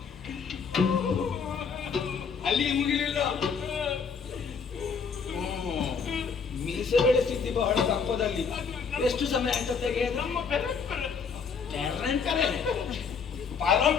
ಅಲ್ಲಿಗೆ ಮುಗಿಲಿಲ್ಲ. ಮೀಸೆ ಬೆಳೆಸಿದ್ದಿ ಬಹಳ ದಪ್ಪದಲ್ಲಿ. ಎಷ್ಟು ಸಮಯ ಅಂತ ತೆಗೆಯೋದು? ನಮ್ಮ ಪರಂಪರೆ.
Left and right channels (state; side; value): quieter; right; 5.9 dB